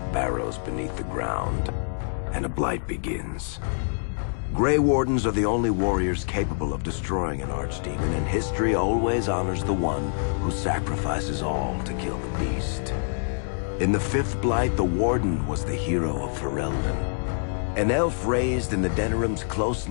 barrows beneath the ground, and a blight begins. Grey Wardens are the only warriors capable of destroying an archdemon, and history always honors the one who sacrifices all to kill the beast. In the fifth blight, the Warden was the hero of Ferelden, an elf raised in the Denerim's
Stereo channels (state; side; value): silent; right; digital silence